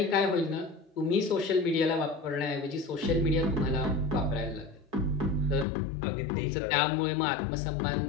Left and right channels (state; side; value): drops out; right; at 5.7 s